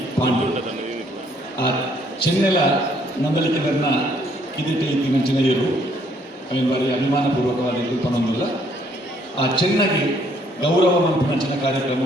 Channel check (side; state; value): both; normal; correlation 0.66